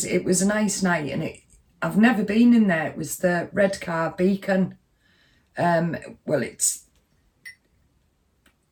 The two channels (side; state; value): both; identical; correlation 1.00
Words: was a nice night, and I've never been in there. It was the Redcar Beacon. Well, it's